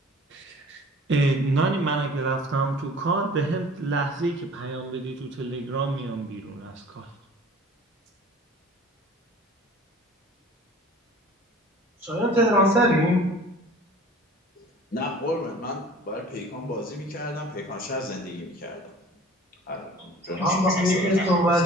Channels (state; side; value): normal; both; correlation 0.46